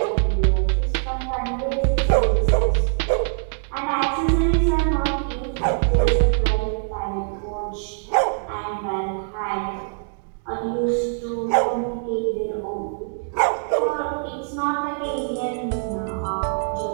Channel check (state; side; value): silent; left; digital silence